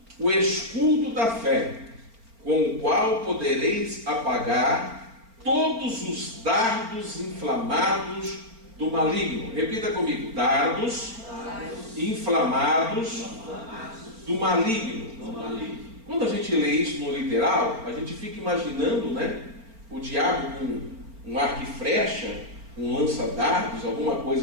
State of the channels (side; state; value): left; late; 4.4 ms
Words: o escudo da fé, com o qual podereis apagar todos os dardos inflamados do maligno. Repita comigo: dardos inflamados do maligno. Quando a gente lê isso no literal, a gente fica imaginando, né, o diabo com um arco e flecha, um lança-dardos, alguma